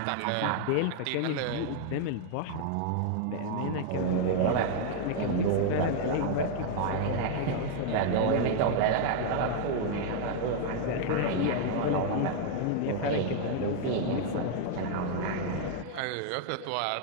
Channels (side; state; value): both; different; correlation 0.00